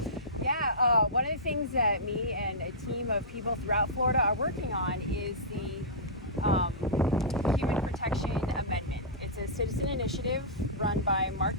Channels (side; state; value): both; normal; correlation -0.16